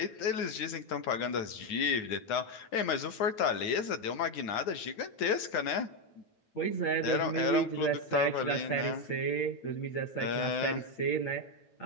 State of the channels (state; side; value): late; right; 9.7 ms